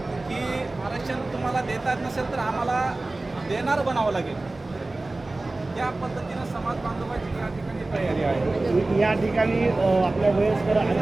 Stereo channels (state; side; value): quieter; left; 3.0 dB